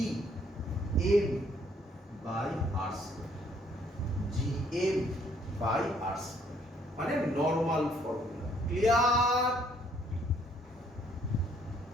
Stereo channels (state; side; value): normal; both; correlation 0.65